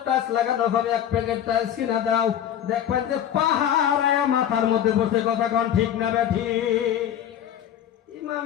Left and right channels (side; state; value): right; quieter; 10.1 dB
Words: টাইলস লাগানো হবে, এক প্যাকেট টাইলস কিনা দাও, দেখবেন যে পাহাড়ে মাথার মধ্যে বসে। কথা কোন ঠিক না বেঠি?